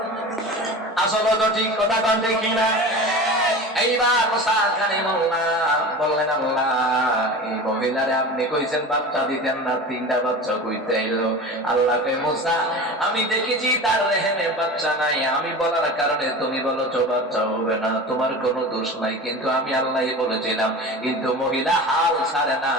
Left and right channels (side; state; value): both; normal; correlation 0.32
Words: আসলে তো ঠিক কথা কন, ঠিক না? এইবার মুসা কালিমুল্লাহ বললেন, আল্লাহ এই মহিলারে আপনি কইছেন বাচ্চা দিতেন না, 3টা বাচ্চা কইতে আইলো। আল্লাহ কই, মুসা আমি দেখেছি তার রেহেমে বাচ্চা নাই, আমি বলার কারণে তুমি বলেছো বাচ্চা হবে না, তোমার কোনো দোষ নাই, কিন্তু আমি আল্লাহই বলেছিলাম। কিন্তু মহিলা হাল ছাড়ে